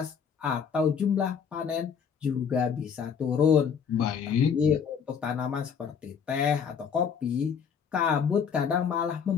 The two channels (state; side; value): quieter; right; 6.9 dB